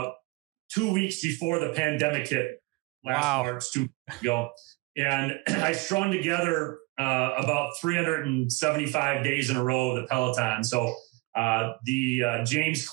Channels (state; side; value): quieter; left; 23.5 dB